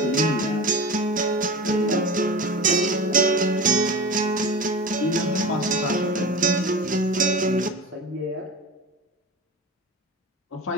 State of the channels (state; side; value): normal; both; correlation 0.31